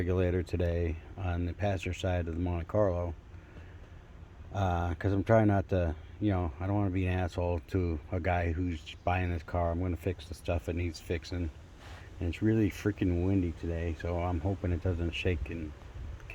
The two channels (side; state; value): both; identical; correlation 1.00